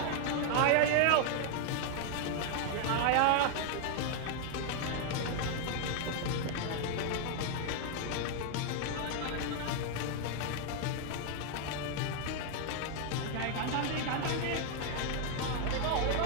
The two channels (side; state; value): both; different; correlation 0.00